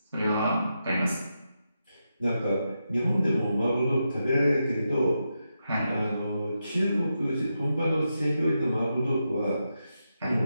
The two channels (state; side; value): inverted; both; correlation -0.86